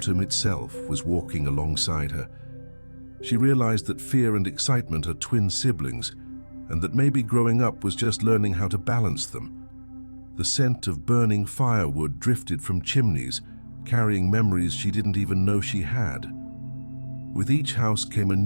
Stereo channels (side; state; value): both; inverted; correlation -1.00